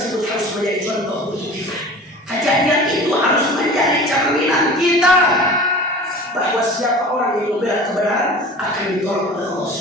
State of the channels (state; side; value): normal; both; correlation 0.39